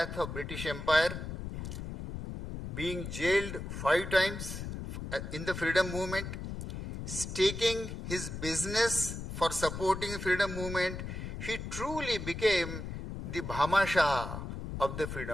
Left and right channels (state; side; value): noise; left; rumble, 7 dB below the sound